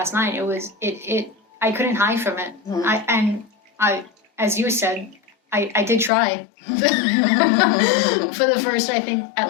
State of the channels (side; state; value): right; drops out; at 6.1 s